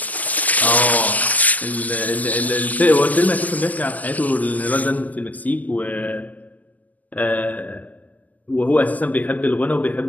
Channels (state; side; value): late; right; 0.079 ms